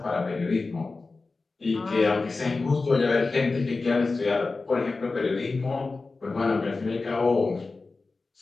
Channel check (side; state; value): right; quieter; 3.8 dB